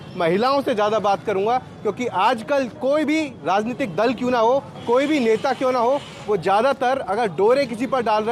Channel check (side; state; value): both; identical; correlation 1.00